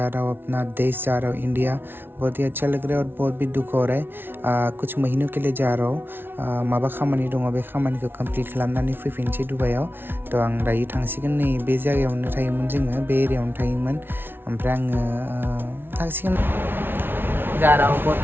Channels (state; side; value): late; left; 0.11 ms